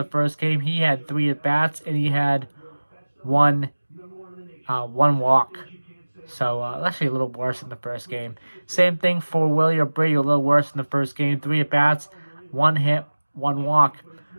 first game. He had 3 at-bats and he had one walk. So, actually a little worse than the first game. Same thing for Willie Abreu, a little worse than the first game. 3 at-bats, 1 hit, 1 walk.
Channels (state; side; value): inverted; both; correlation -1.00